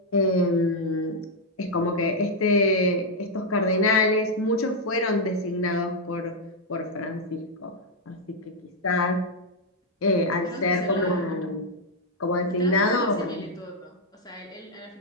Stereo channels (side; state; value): both; normal; correlation -0.01